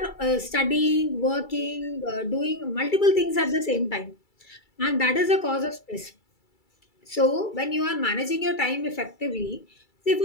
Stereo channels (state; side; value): late; right; 2.3 ms